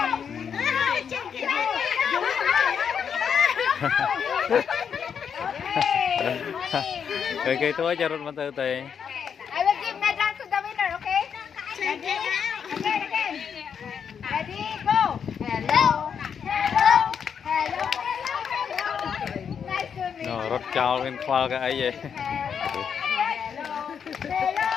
thai cái túi cho rút mà từ từ. I will give medal to the winner, okay? Ready? Again. Ready? Go. Hello. Hello. Hello. Nice to meet you. Nó rút cao lên khoa cái ấy vậy. Hello.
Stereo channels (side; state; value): right; quieter; 7.2 dB